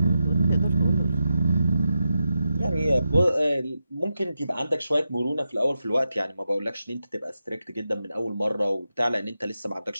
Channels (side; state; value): both; inverted; correlation -0.88